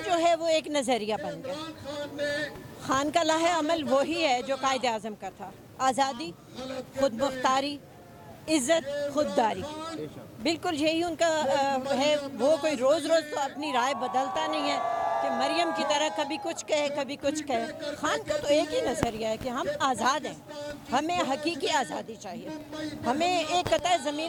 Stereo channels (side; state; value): both; identical; correlation 1.00